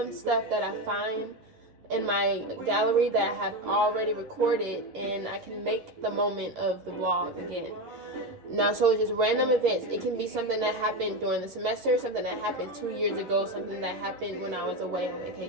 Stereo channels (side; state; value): left; late; 10 ms